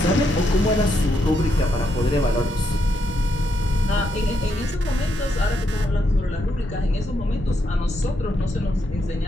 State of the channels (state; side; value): normal; both; correlation 0.79